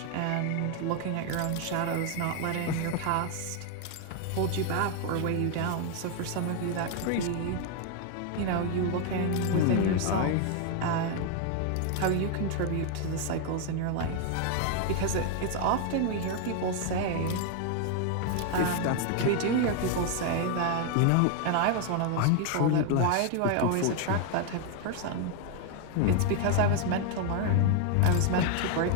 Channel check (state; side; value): different; both; correlation 0.00